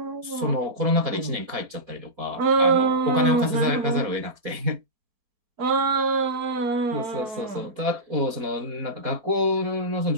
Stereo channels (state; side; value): late; left; 4.1 ms